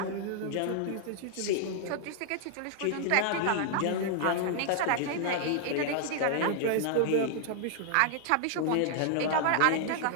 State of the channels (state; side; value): different; both; correlation -0.01